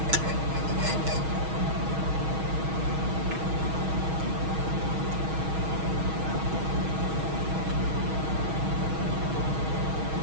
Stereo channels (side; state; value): left; late; 6.3 ms